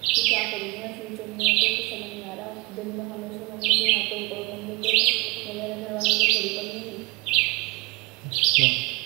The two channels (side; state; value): left; quieter; 25.2 dB